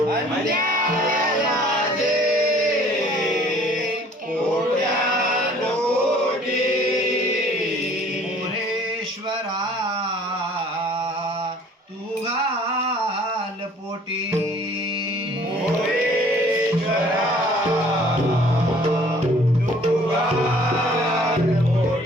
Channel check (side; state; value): both; normal; correlation 0.54